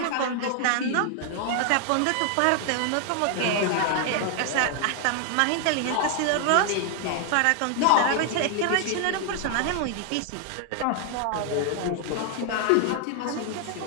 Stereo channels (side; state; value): both; different; correlation 0.00